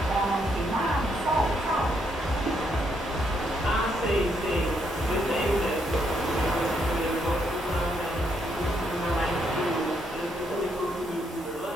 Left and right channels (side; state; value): both; normal; correlation 0.75